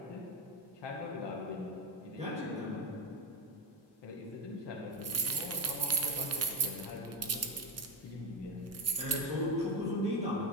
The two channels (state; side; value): normal; both; correlation 0.14